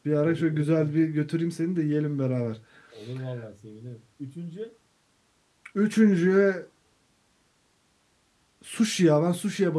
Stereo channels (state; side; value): identical; both; correlation 1.00